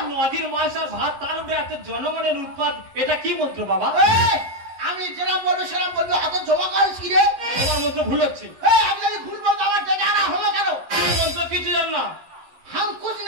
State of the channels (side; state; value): left; late; 11 ms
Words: নদীর মাছ আর ভাত, তার উপরে এত জনগণের উৎপাদ, এটা কি মন্ত্র বাবা? আমি যেরাম বলবো সেরাম বলবো, হাতে জমা করিস কি রে? তোমার মন্ত্র ভুল হচ্ছে। আমি যদি ভুল বলতো আমার ডেকে আনা হলো কেন? তুমি মন্ত্র কিছু জান না। হাম কুছ